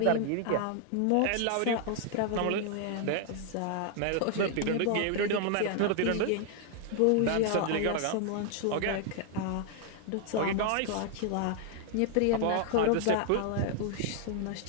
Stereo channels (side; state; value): both; different; correlation 0.00